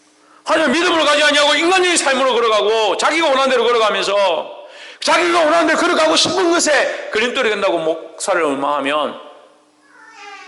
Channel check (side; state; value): both; identical; correlation 1.00